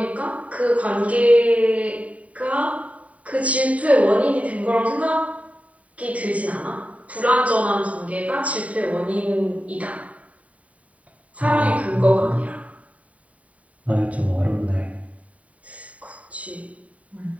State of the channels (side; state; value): left; late; 0.068 ms